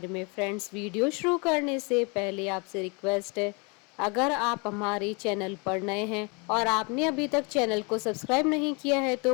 में। फ्रेंड्स, वीडियो शुरू करने से पहले आपसे रिक्वेस्ट है, अगर आप हमारे चैनल पर नए हैं और आपने अभी तक चैनल को सब्सक्राइब नहीं किया है तो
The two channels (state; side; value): quieter; right; 31.2 dB